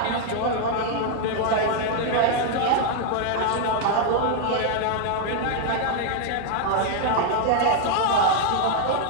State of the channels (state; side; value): different; both; correlation 0.00